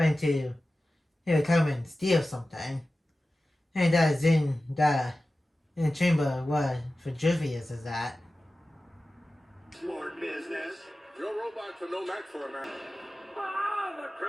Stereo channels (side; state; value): both; normal; correlation 0.95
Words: to come and steal something. And that is in the chamber where Vitruvius is at. Smart business. Your robots are no match for a man. Ah, the